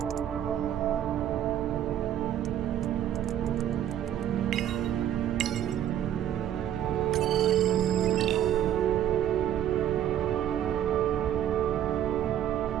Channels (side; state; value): left; quieter; 10.8 dB